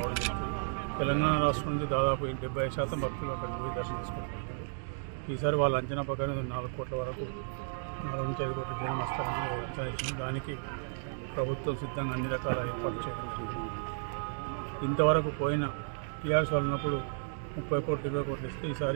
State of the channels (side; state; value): left; silent; digital silence